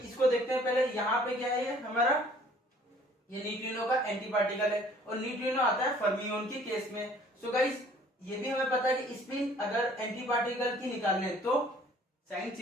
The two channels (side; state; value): both; normal; correlation 0.55